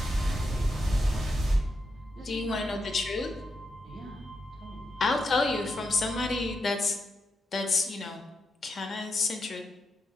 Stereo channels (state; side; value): normal; both; correlation 0.85